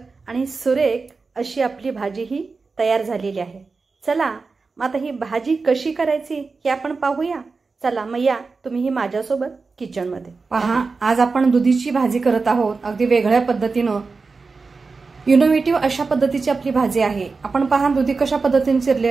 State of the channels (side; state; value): left; quieter; 4.3 dB